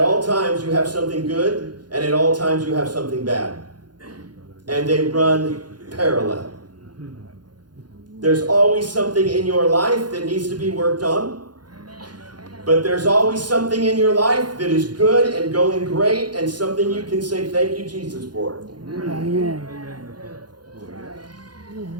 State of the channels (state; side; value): late; left; 0.70 ms